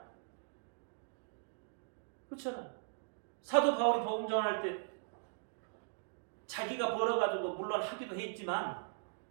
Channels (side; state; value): left; silent; digital silence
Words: 그렇잖아요. 사도 바울이 복음 전할 때 자기가 벌어가지고 물론 하기도 했지만